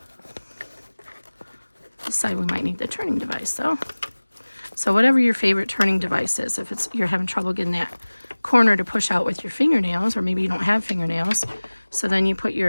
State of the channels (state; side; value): inverted; both; correlation -1.00